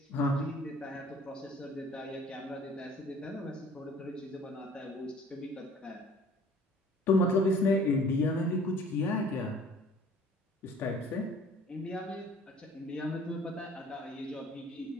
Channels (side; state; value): both; normal; correlation 0.51